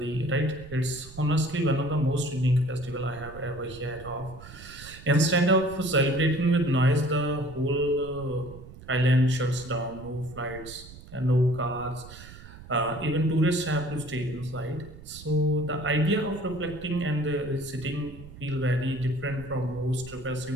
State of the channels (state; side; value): noise; right; rumble, 17 dB below the sound